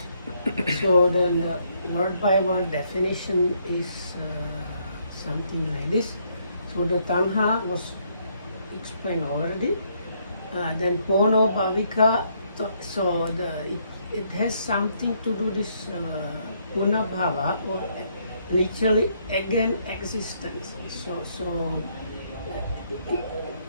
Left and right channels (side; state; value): both; inverted; correlation -0.71